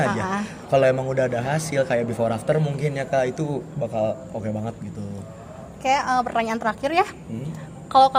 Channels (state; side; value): identical; both; correlation 1.00